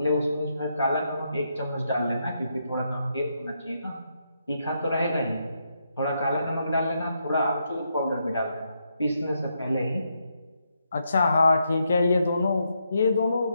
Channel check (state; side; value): inverted; both; correlation -0.80